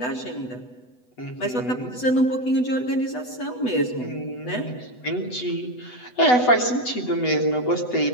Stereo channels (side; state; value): right; late; 8.0 ms